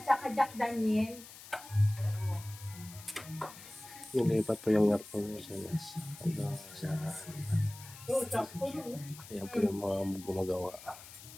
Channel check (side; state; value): left; noise; hiss, 16 dB below the sound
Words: saka Jack Daniel. Nilipat po yung aircon niya sa ayan po yung mga gumagawa.